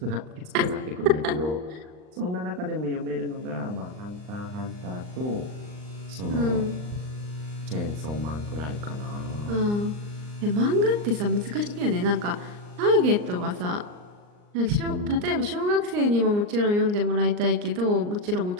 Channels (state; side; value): late; left; 39 ms